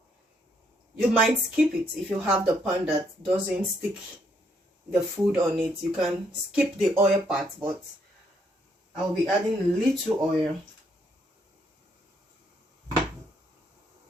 you might skip it. If you have the pan that doesn't stick the food on it, you can skip the oil part, but I'll be adding a little oil.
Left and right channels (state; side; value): normal; both; correlation 0.72